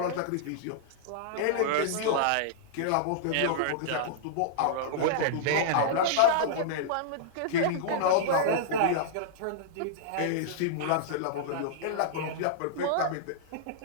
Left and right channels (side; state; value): both; different; correlation -0.01